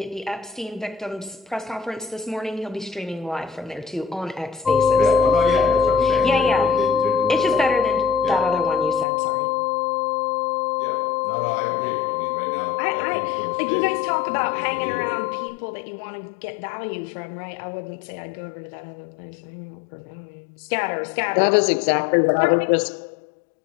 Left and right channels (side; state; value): right; drops out; at 9.1 s